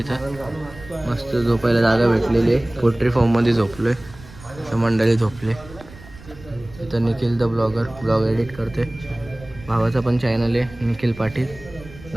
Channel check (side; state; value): right; noise; rumble, 19 dB below the sound